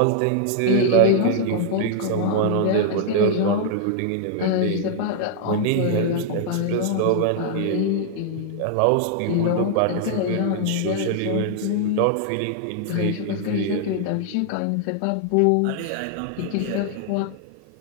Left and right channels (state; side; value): different; both; correlation -0.01